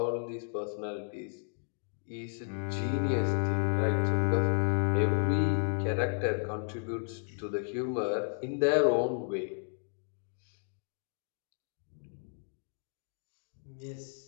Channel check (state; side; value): silent; right; digital silence